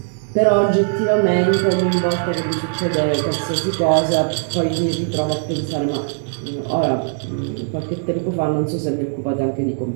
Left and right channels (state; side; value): silent; left; digital silence